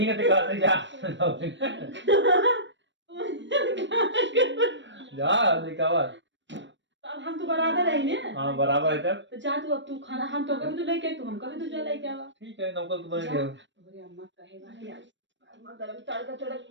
है तो कहते जा जा दिखावा। अब हम तो बराबर है ना। हाँ बराबर है तब तो जा तू अब तू खाना हम तो कभी तो लेके तू हम कभी तो जा लेके आवा। ठीक है नौकर तो बन गया। तोरे अम्मा कहे वाली आज अम्मा गरम तड़का तड़क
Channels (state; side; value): late; left; 0.53 ms